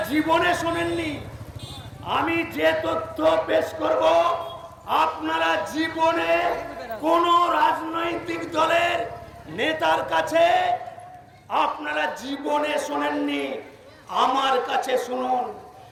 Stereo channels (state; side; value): identical; both; correlation 1.00